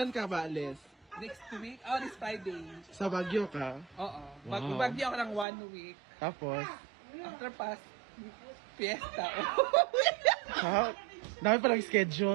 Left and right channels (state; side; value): drops out; left; at 5.5 s